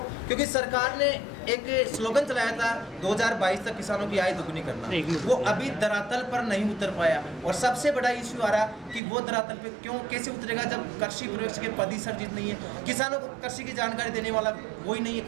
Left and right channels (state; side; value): drops out; left; at 9.0 s